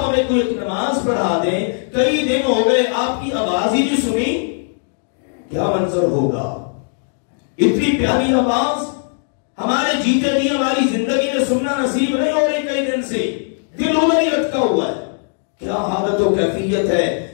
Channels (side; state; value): right; silent; 67 dB below the other